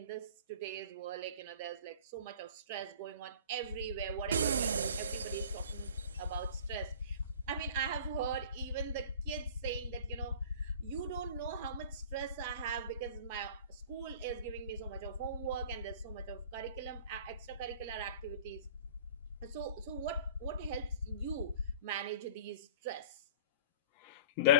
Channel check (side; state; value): both; inverted; correlation -0.42